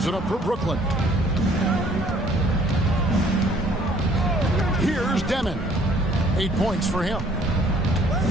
it up for Brooklyn. Here's Demon. 8 points for him.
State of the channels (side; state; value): both; normal; correlation 0.59